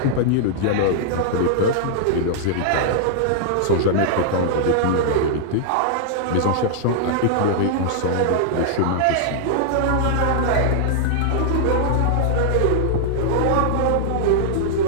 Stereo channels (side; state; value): both; different; correlation -0.01